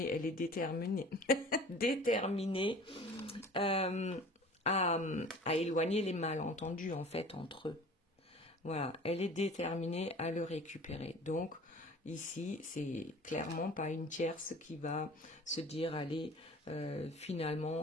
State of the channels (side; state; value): both; normal; correlation 0.44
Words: elle est déterminée, déterminée à éloigner les malentendus, en fait, entre eux. Voilà, elle est déterminée à le récupérer. Donc, ici, c'est clairement pas une tierce qui va se dire, allez,